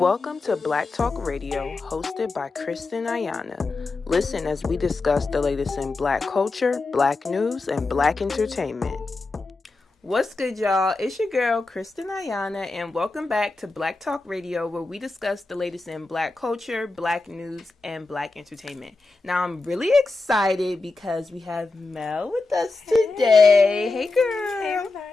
Welcome to Black Talk Radio, hosted by Kristen Ayana. Listen as we discuss the latest in Black culture, Black news, and Black entertainment. What's good, y'all? It's your girl, Kristen Ayana, and welcome back to Black Talk Radio, where we discuss the latest in Black culture, Black news, and Black entertainment. Now, I'm really excited because we have Mel with us today. Hey, girl. Hey,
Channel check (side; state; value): right; quieter; 3.5 dB